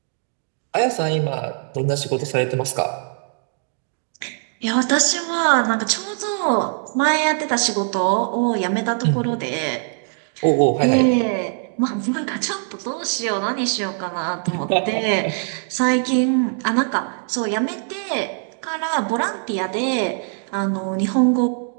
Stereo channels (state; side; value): silent; left; 64 dB below the other